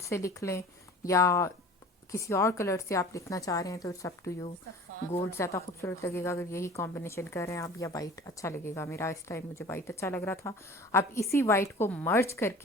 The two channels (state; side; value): normal; both; correlation 0.42